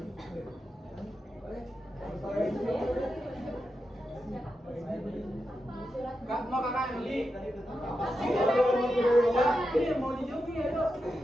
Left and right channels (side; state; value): both; normal; correlation 0.88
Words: Kak, mau kakak Yuli? Ini mau dijumpi ya, Dok.